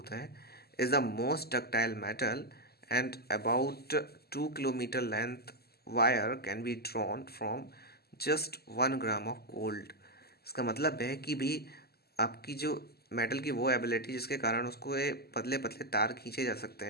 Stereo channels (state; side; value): late; right; 0.46 ms